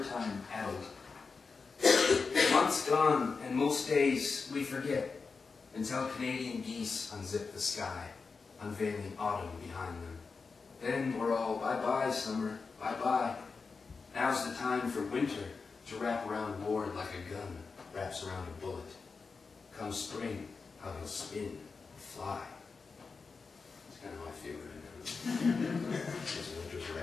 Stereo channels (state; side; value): quieter; right; 4.7 dB